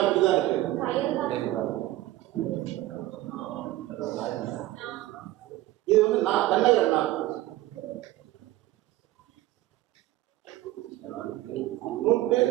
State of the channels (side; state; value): left; quieter; 16.4 dB